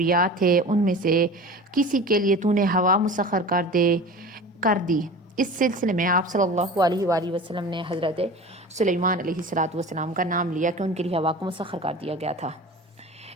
تھے، ان میں سے کسی کے لیے تو نے ہوا مسخر کر دی. اس سلسلے میں آپ صلی اللہ علیہ وآلہ وسلم نے حضرت سلیمان علیہ الصلاۃ والسلام کا نام لیا کہ ان کے لیے ہوا کو مسخر کر دیا گیا تھا.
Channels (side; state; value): both; normal; correlation 0.36